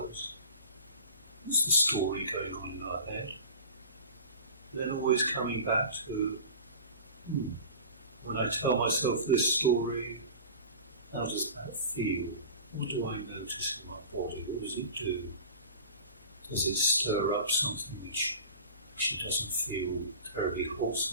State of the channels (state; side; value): inverted; both; correlation -0.36